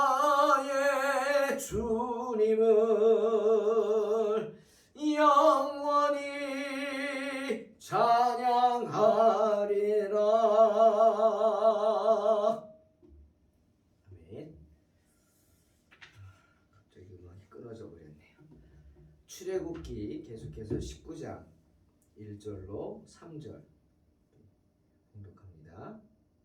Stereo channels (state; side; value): identical; both; correlation 1.00